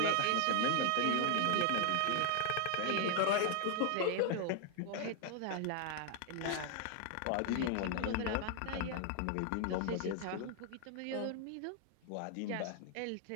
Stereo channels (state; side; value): different; both; correlation 0.00